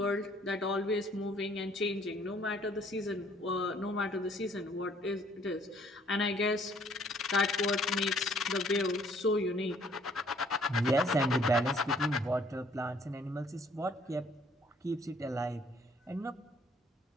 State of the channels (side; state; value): both; normal; correlation 0.61